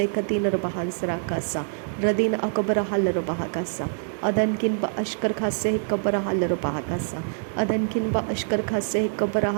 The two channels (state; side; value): silent; left; digital silence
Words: Katina Bahansarakasa, Radina Akabara Halarabahakasa, Adankin Ba Ashkar Khase Kabara Halarabahakasa, Adankin Ba Ashkar Khase Kabara